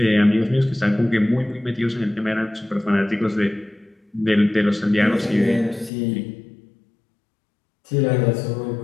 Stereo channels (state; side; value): drops out; right; at 5.9 s